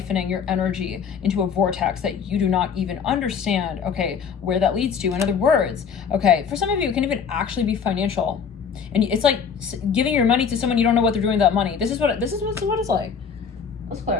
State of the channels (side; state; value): right; quieter; 6.6 dB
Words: your energy into a vortex that you do not even understand, okay, where that leads to. In other words, okay, for some of you, it can even actually be financial. And it's like giving your money to someone you don't know what they're doing with that money. This is what it's like. Let's